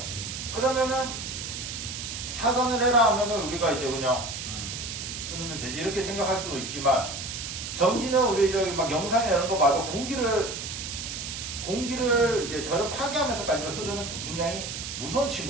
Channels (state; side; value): noise; right; hiss, 6 dB below the sound